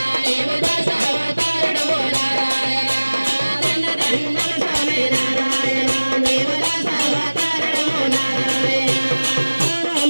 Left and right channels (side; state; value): both; inverted; correlation -1.00